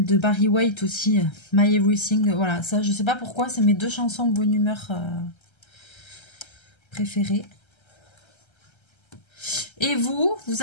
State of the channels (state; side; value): late; right; 1.3 ms